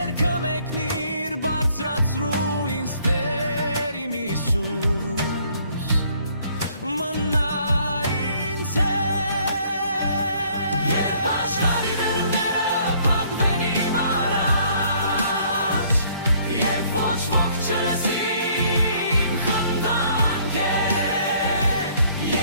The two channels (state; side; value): inverted; both; correlation -0.62